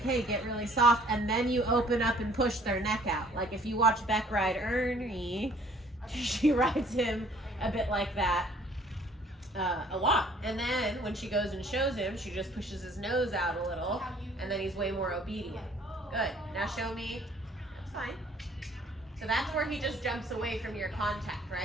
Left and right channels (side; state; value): both; normal; correlation 0.57